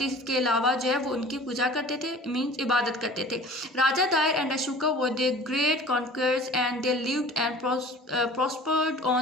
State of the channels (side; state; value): both; normal; correlation 0.44